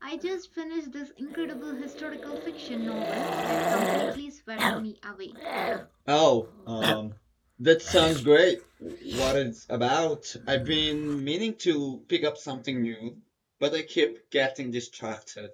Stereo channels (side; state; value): both; identical; correlation 1.00